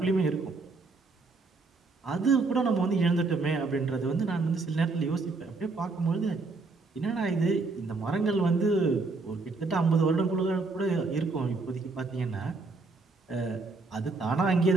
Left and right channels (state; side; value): quieter; left; 3.8 dB